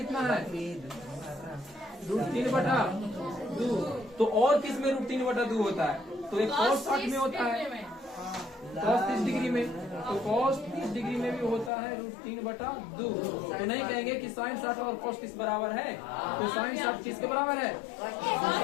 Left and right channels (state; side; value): drops out; right; at 11.7 s